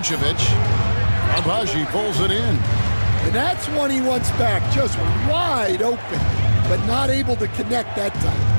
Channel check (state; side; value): inverted; both; correlation -1.00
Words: Abaji pulls it in. And that's one he wants back, just wide open, but not able to connect that time.